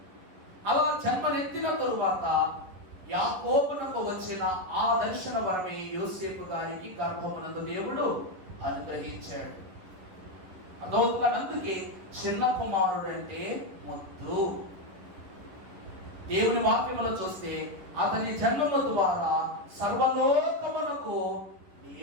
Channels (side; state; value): left; late; 11 ms